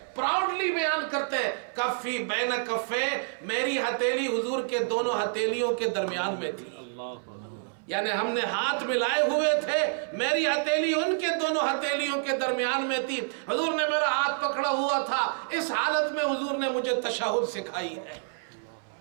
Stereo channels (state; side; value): silent; left; 59 dB below the other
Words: پراؤڈلی بیان کرتے ہیں، کفی بین کفی، میری ہتھیلی حضور کے دونوں ہتھیلیوں کے درمیان میں تھی، یعنی ہم نے ہاتھ ملائے ہوئے تھے، میری ہتھیلی ان کے دونوں ہتھیلیوں کے درمیان میں تھی، حضور نے میرا ہاتھ پکڑا ہوا تھا۔ اس حالت میں حضور نے مجھے تشہد سکھائی ہے۔